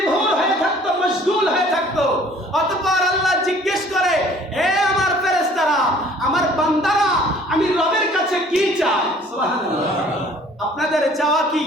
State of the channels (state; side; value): normal; both; correlation 0.54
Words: হয়ে থাকতো, মশগুল হয়ে থাকতো। অতঃপর আল্লাহ জিজ্ঞেস করে, হে আমার ফেরেশতারা, আমার বান্দারা আমি রবের কাছে কি চাই? সুবহানাল্লাহ। আপনাদের চাওয়া কি?